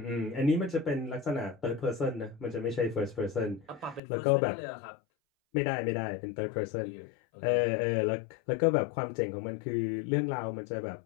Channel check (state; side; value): drops out; right; at 4.0 s